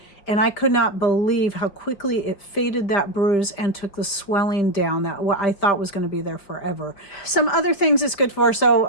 and I could not believe how quickly it faded that bruise and took the swelling down that what I thought was going to be there forever. Some other things it's good for,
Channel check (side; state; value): right; late; 5.1 ms